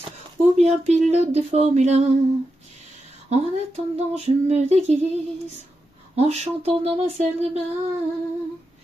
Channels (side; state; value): both; normal; correlation 0.88